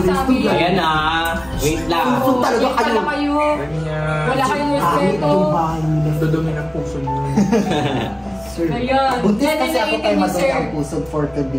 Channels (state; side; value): noise; left; hum, 27 dB below the sound